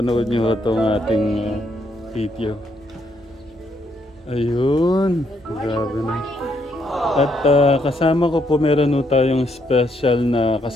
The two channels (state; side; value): normal; both; correlation 0.74